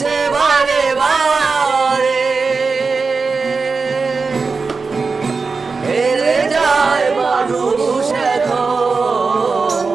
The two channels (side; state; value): left; quieter; 4.5 dB